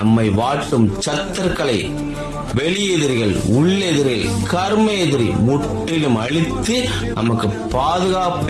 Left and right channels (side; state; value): both; identical; correlation 1.00